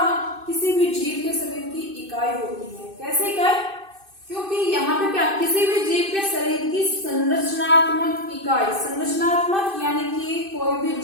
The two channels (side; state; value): left; late; 2.6 ms